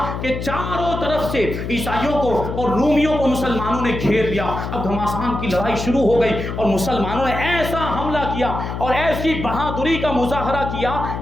کہ چاروں طرف سے عیسائیوں کو اور رومیوں کو مسلمانوں نے گھیر لیا۔ اب گھماسان کی لڑائی شروع ہو گئی اور مسلمانوں نے ایسا حملہ کیا اور ایسی بہادری کا مظاہرہ کیا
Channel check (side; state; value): left; noise; hum, 5 dB below the sound